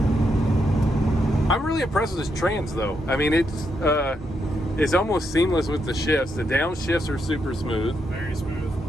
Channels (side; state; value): both; normal; correlation 0.80